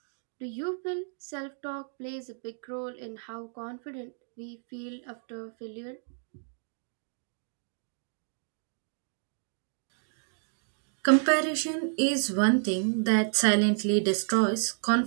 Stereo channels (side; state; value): left; silent; digital silence